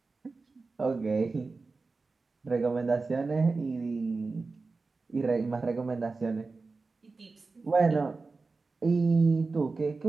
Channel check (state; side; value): quieter; left; 4.0 dB